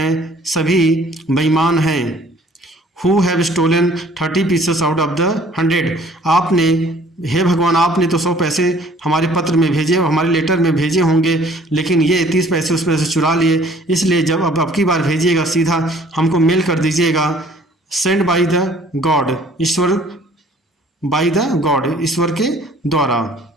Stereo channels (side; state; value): both; normal; correlation 0.55